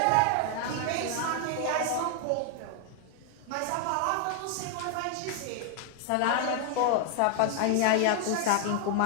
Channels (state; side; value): different; both; correlation 0.01